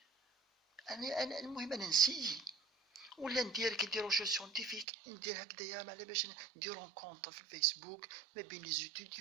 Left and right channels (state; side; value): drops out; left; at 4.9 s